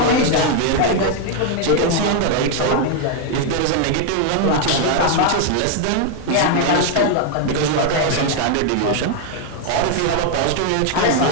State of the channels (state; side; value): different; both; correlation 0.01